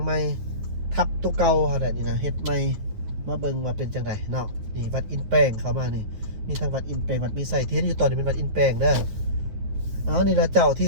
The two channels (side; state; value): left; late; 9.6 ms